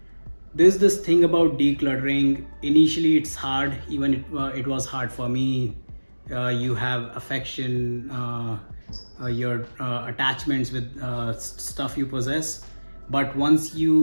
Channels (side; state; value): both; inverted; correlation -1.00